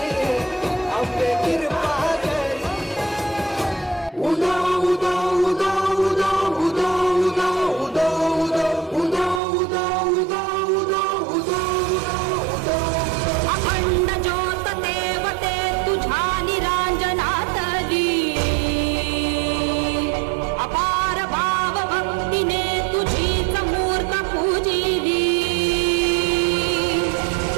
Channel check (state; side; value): drops out; left; at 9.4 s